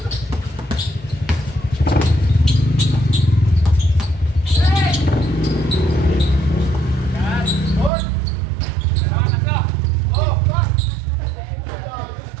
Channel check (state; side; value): drops out; left; at 7.9 s